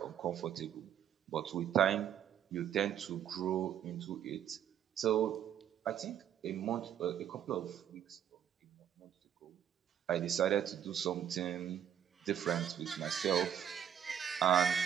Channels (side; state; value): left; quieter; 9.6 dB